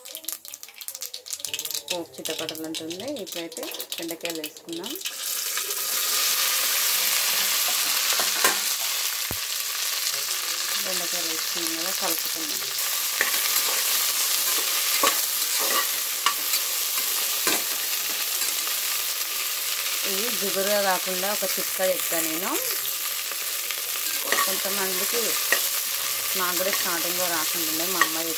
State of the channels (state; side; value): identical; both; correlation 1.00